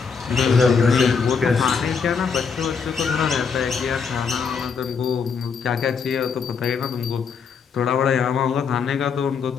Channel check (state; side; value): quieter; right; 5.8 dB